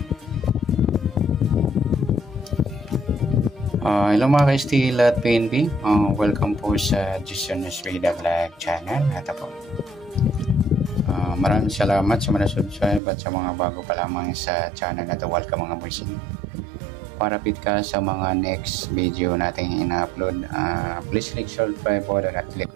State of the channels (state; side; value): drops out; left; at 13.0 s